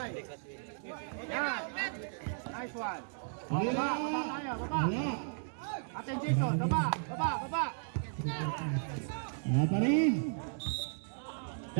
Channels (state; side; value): silent; left; digital silence